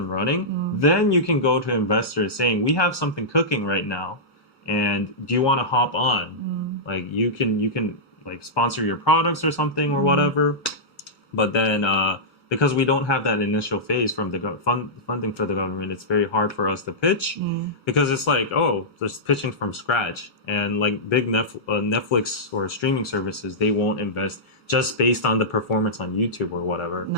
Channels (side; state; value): both; normal; correlation -0.13